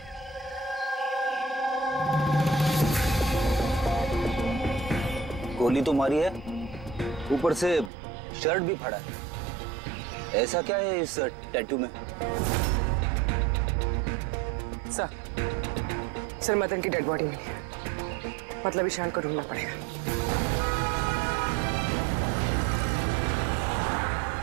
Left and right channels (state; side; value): drops out; left; at 7.9 s